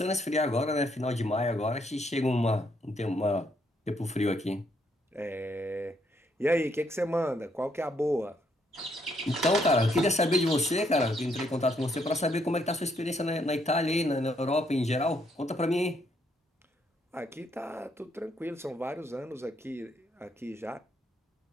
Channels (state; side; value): normal; both; correlation 0.73